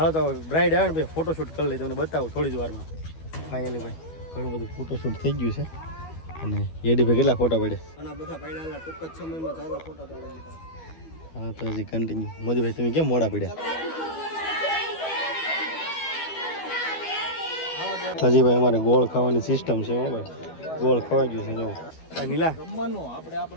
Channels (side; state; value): right; late; 12 ms